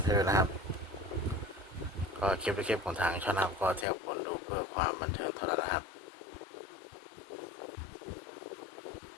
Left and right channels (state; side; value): drops out; right; at 3.9 s